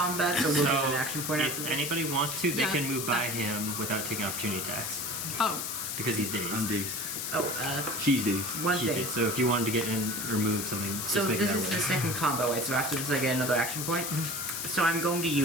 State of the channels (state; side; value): noise; left; hiss, 3 dB below the sound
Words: so we'll get an action point if after this? anybody wants to, they Yeah. can move by him without taking opportunity attacks. Oh, Because he's dazed. I'm dazed. Oh, She's dazed. one He's thing. dazed. So if you wanted to get in or move something, So just make this that is way. the second combo way, so after this I get another action point? So I'm going to